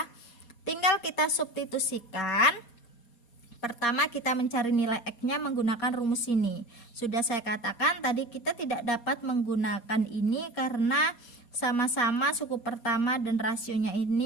Tinggal kita substitusikan. Pertama kita mencari nilai X-nya menggunakan rumus ini. Sudah saya katakan tadi kita tidak dapat menggunakan ini karena sama-sama suku pertama dan rasionya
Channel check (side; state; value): right; late; 4.2 ms